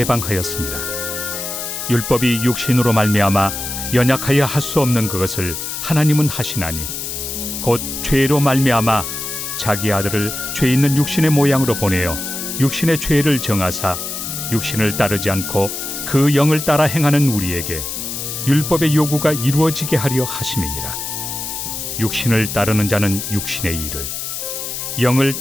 율법이 육신으로 말미암아 연약하여 할 수 없는 그것을 하나님은 하시나니, 곧 죄로 말미암아 자기 아들을 죄 있는 육신의 모양으로 보내어 육신의 죄를 정하사 육신을 따르지 않고 그 영을 따라 행하는 우리에게 율법의 요구가 이루어지게 하려 하심이니라. 육신을 따르는 자는 육신의 일을, 영을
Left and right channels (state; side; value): noise; left; hiss, 5 dB below the sound